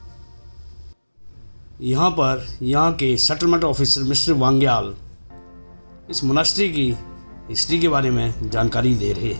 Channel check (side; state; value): both; inverted; correlation -1.00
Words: यहाँ पर यहाँ के सेटलमेंट ऑफिसर मिस्टर वांग्याल इस मोनास्ट्री की हिस्ट्री के बारे में जानकारी दे रहे